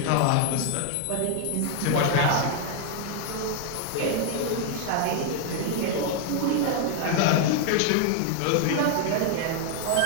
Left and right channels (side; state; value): both; different; correlation 0.00